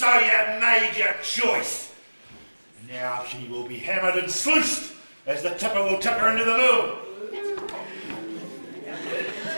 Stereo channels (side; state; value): both; inverted; correlation -1.00